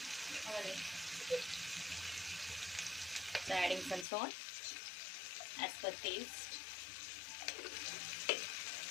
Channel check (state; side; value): drops out; right; at 4.0 s